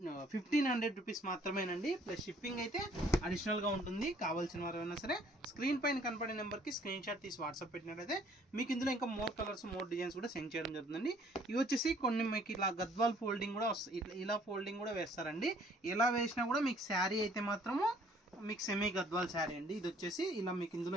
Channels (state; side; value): normal; both; correlation 0.60